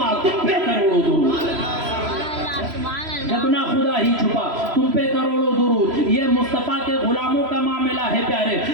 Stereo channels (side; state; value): left; late; 3.0 ms